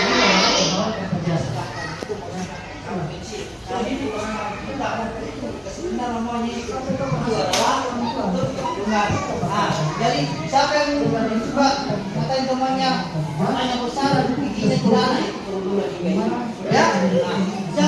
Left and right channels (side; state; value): both; identical; correlation 1.00